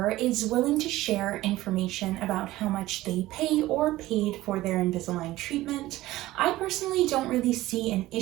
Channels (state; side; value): quieter; left; 16.8 dB